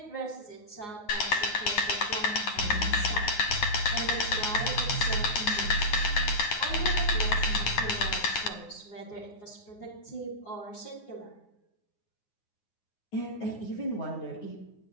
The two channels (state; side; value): late; right; 9.6 ms